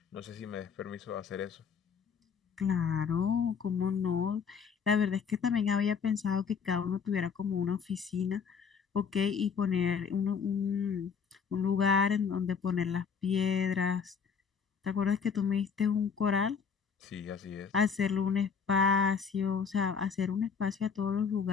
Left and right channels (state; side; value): quieter; right; 6.3 dB